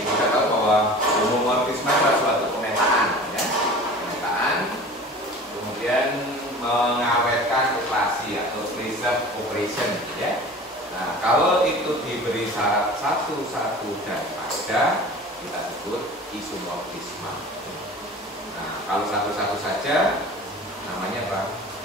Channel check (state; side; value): normal; both; correlation 0.40